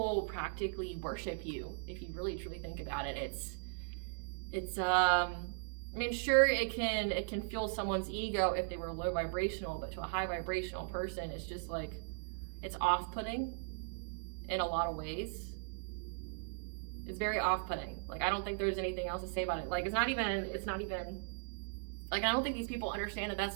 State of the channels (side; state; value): left; silent; digital silence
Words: practically worship you. If you really truly think about it, it's I mean, sure, it can fuel someone's ego if they were low vibrational, but to a high vibrational person, it's just like, it's off-putting in a lot of ways. It's very off-putting. Like, I don't think there's anything else to say about it. Like, it's not even like, I don't think these people understand that